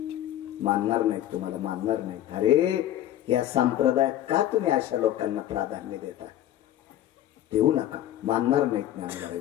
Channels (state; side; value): quieter; right; 12.5 dB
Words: मानणार नाहीत, तुम्हाला मानणार नाहीत. अरे या संप्रदायात का तुम्ही अशा लोकांना प्राधान्य देता? देऊ नका. मानणार नाहीत ज्ञानोबा आहे,